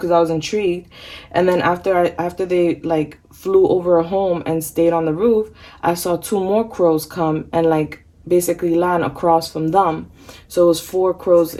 I was intrigued. And then after they like flew over a home and stayed on the roof, I saw 2 more crows come and like basically land across from them. So it was 4 crows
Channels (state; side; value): identical; both; correlation 1.00